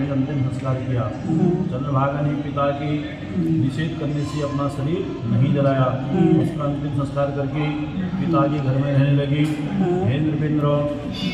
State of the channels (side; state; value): both; identical; correlation 1.00